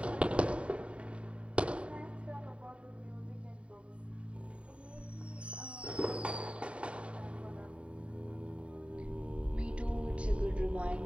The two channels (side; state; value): left; late; 0.061 ms